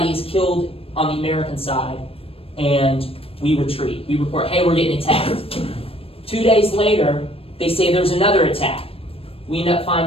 is killed on the American side, and we retreat. We report, hey, we're getting attacked. 2 days later, they say there's another attack. We end up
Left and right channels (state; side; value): late; right; 0.28 ms